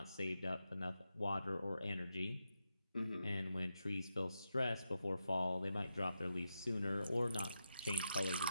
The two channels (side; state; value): both; inverted; correlation -0.85